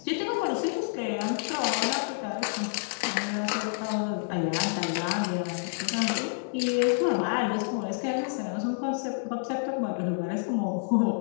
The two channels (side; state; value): right; silent; digital silence